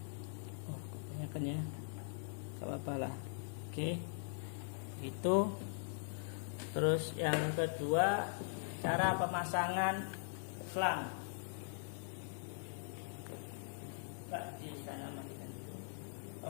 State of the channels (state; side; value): silent; right; digital silence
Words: Ya, gak apa-apa lah. Oke, itu. Terus yang kedua, cara pemasangan selang. Di sana matikan.